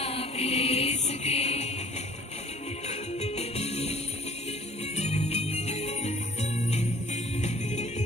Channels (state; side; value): normal; both; correlation 0.54